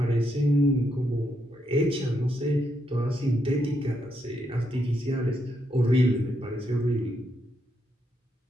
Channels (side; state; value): both; normal; correlation 0.79